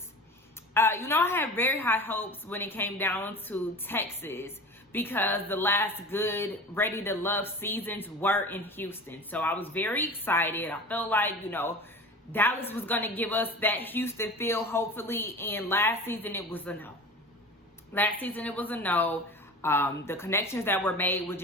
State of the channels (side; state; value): both; normal; correlation 0.35